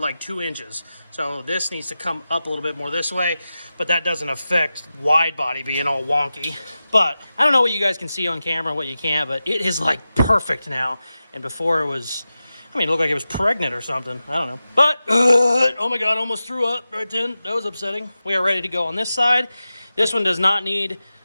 2 inches. So this needs to come up a little bit more this way, but that doesn't affect wide body being all wonky. But I don't know what you guys can see on camera, what you can't, but it is like perfect now. And before it was, I mean, it looked like it was pregnant or something. I don't know. But, oh my God, almost threw up right then. That was upsetting. We are ready to go on this side. This one does not need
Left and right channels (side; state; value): both; inverted; correlation -0.93